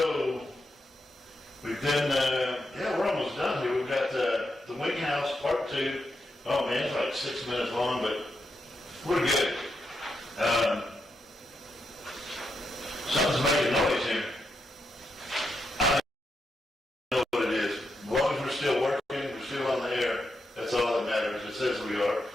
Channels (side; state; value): both; normal; correlation 0.84